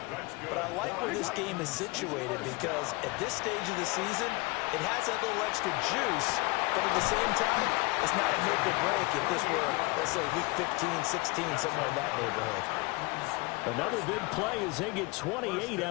But I like where this game is situated because at this stage of the season, it has that little extra juice. But at the same time, it's not a make or break if this were, let's say, week 15, 16, somewhere in that neighborhood. Another big play as they get 28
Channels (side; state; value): right; quieter; 25.2 dB